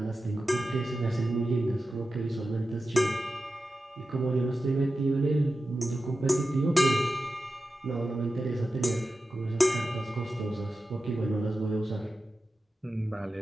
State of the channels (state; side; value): normal; both; correlation 0.92